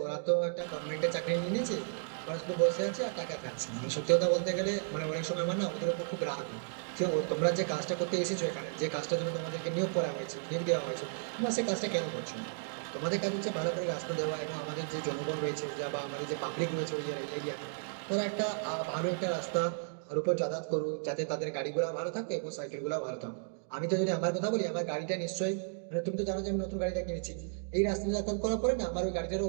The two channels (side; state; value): left; silent; digital silence